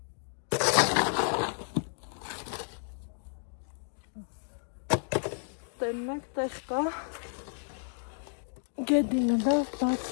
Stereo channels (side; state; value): right; silent; digital silence